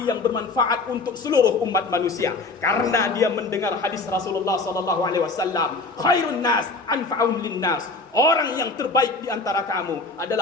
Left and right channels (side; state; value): right; quieter; 3.6 dB